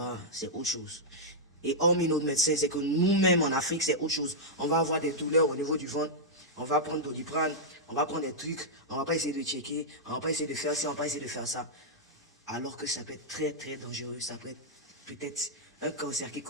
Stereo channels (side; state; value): both; normal; correlation -0.07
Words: c'est autre chose. Et hormis nos médecins, c'est que nous-mêmes en Afrique, c'est autre chose. On va avoir des douleurs au niveau du ventre, on va prendre Doliprane, on va prendre des trucs, on va pas essayer de checker, on va pas essayer de faire ça, on va pas essayer de faire ça. Alors que ça peut être très très dangereux, ça peut être peut-être un cancer qui